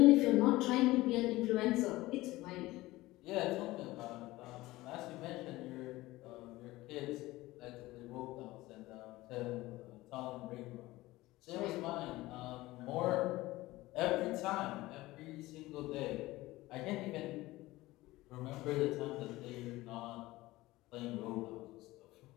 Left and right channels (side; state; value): right; quieter; 18.6 dB